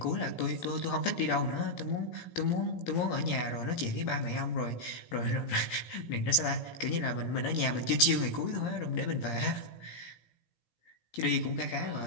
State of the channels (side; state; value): right; late; 17 ms